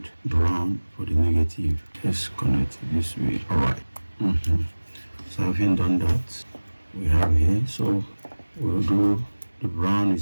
brown for the negative. Let's connect it this way. Alright. So having done that, we have here, so we'll do the brown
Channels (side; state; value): both; inverted; correlation -1.00